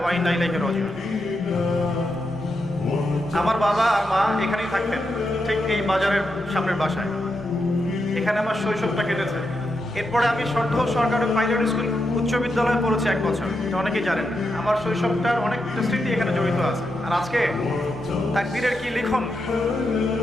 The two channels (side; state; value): both; normal; correlation 0.85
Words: ওয়া ইন্না ইলাইহি রাজিউন। আমার বাবা আর মা এখানেই থাকতেন, ঠিক এই বাজারের সামনের বাসায়। এখানে আমার শৈশবটা কেটেছে। এরপরে আমি সর্দার সরকারি প্রাইমারি স্কুল উচ্চ বিদ্যালয়ে পড়েছি 1 বছর, এটা অনেকেই জানেন। আমার শৈশবটার অনেক স্মৃতি এখানে জড়িত আছে। আর আজকে তাকবীরের কি লিখন